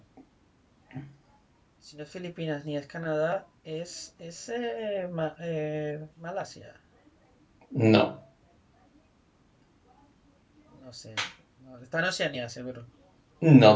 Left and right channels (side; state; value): both; identical; correlation 1.00